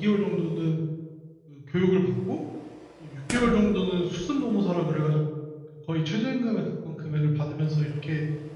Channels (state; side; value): identical; both; correlation 1.00